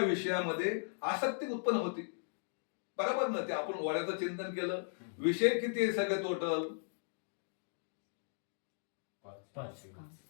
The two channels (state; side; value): silent; right; digital silence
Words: विषयामध्ये आसक्ती उत्पन्न होती. बरोबर ना. ते आपण वड्याचं चिंतन केलं, विषय किती आहे सगळे टोटल, 5